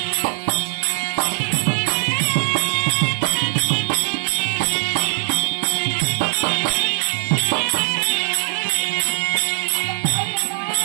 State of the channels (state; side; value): silent; left; digital silence